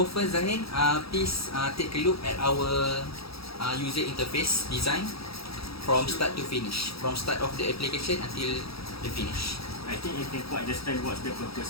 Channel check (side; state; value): right; late; 0.76 ms